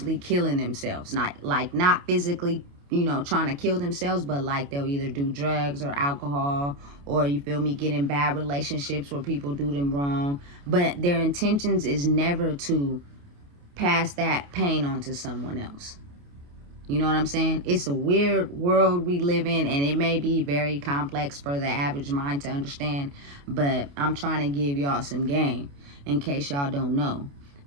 killing themselves, not physically, you know, trying to kill themselves, but like they'll either do drugs or alcohol, or you feel me, get in bad relationships where people do them wrong, but their intentions is never to pass that pain on to someone else. You know what I'm saying? It's a weird world we live in, and it may be very complex for the average mind to understand, but I'm trying to give y'all some game in case y'all don't know,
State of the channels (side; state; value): left; late; 28 ms